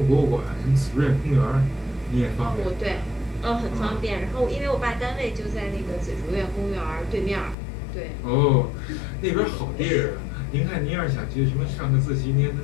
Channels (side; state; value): right; drops out; at 7.6 s